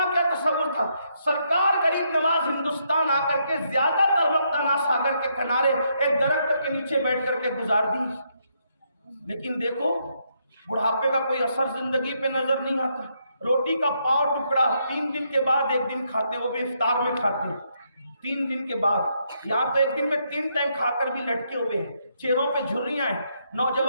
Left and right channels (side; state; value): both; inverted; correlation -0.76